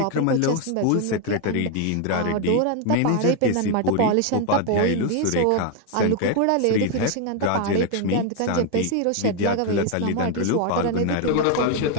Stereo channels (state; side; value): different; both; correlation 0.01